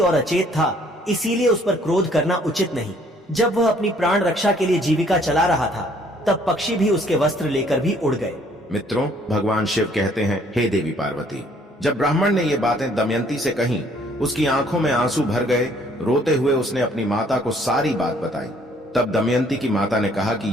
अचेत था, इसीलिए उस पर क्रोध करना उचित नहीं। जब वह अपनी प्राण रक्षा के लिए जीविका चला रहा था तब पक्षी भी उसके वस्त्र लेकर भी उड़ गए। मित्रों, भगवान शिव कहते हैं, हे देवी पार्वती। जब ब्राह्मण ने ये बातें दमयंती से कहीं, उसकी आंखों में आंसू भर गए। रोते हुए उसने अपनी माता को सारी बात बताई। तब दमयंती की माता ने कहा कि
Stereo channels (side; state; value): both; normal; correlation 0.61